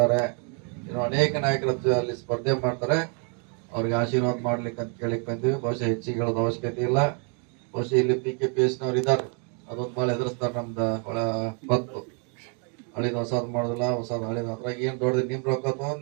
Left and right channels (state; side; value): quieter; left; 39.5 dB